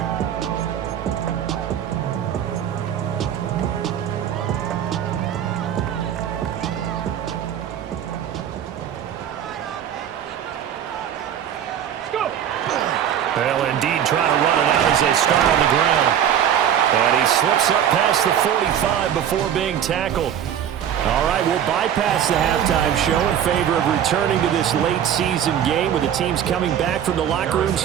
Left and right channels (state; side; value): quieter; left; 9.6 dB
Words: They'll indeed try to run it out as they start on the ground. And he slips up past the 45 before being tackled. All right, we'll bypass the halftime show in favor of returning to this late season game with the teams coming back from the locker rooms